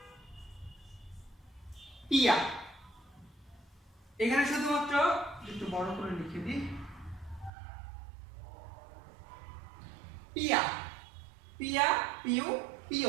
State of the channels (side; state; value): left; drops out; at 7.5 s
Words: পিয়া। এখানে শুধুমাত্র একটু বড় করে লিখে দিই, পিয়া, পিয়া, পিউ,